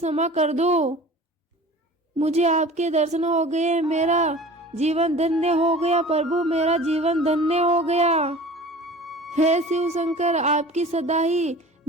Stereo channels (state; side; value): normal; both; correlation 0.41